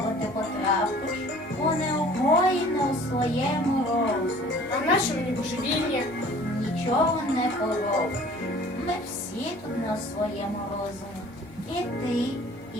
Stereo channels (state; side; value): normal; both; correlation 0.50